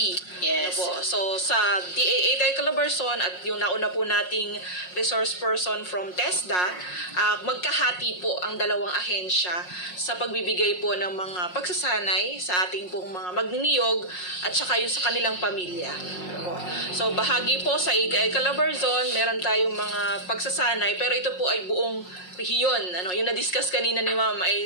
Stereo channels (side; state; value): right; late; 5.5 ms